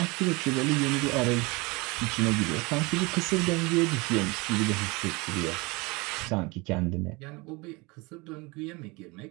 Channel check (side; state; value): left; quieter; 25.8 dB